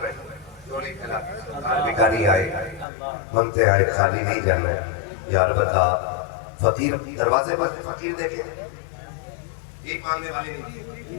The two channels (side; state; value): right; drops out; at 2.9 s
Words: رہے جو نہیں کھلا بھکاری آئے منگتے آئے خالی نہیں جانا ہے. یار بتا فقیر دروازے پر فقیر دیکھیں ایک مانگنے والے